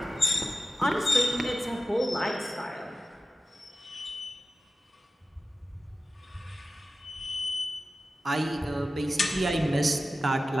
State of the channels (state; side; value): normal; both; correlation 0.94